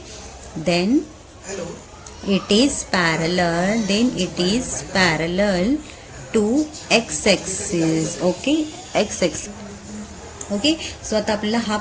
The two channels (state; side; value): identical; both; correlation 1.00